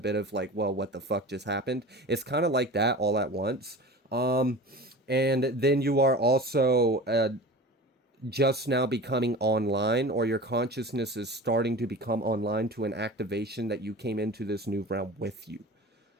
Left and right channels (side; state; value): both; normal; correlation 0.35